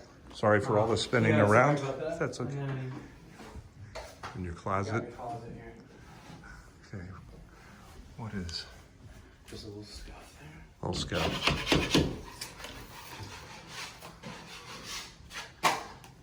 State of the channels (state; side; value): identical; both; correlation 1.00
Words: Sorry for all the spinning Yeah, sorry around. about that. That's And okay. then In your you got closet. your closet here. Okay. What is? Just a little scuff there. Little scout.